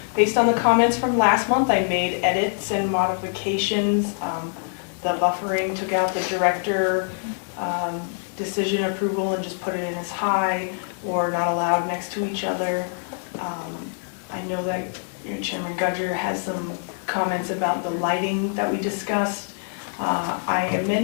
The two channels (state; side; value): silent; right; digital silence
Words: based on the comments from last month, I made edits and modifications. The buffering, took out the director decision approval and just put it in as high or not allowed next to each other. I know that Chairman Gudger has some comments about the lighting that we discussed. I